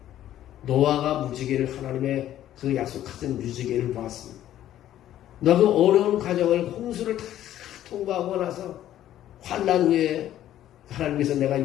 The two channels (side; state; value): right; quieter; 12.3 dB